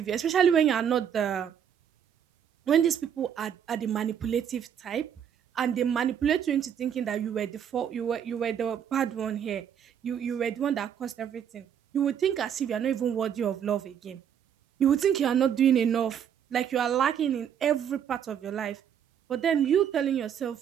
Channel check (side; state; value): left; quieter; 8.7 dB